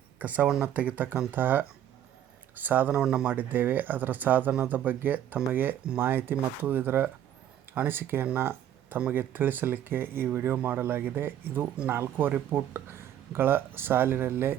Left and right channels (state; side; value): quieter; left; 10.8 dB